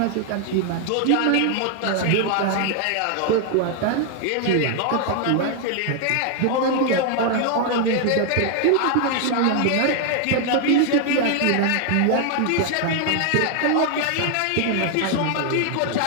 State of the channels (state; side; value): different; both; correlation 0.00